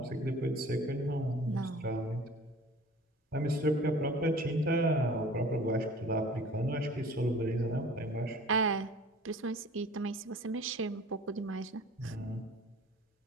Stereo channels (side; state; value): both; normal; correlation 0.46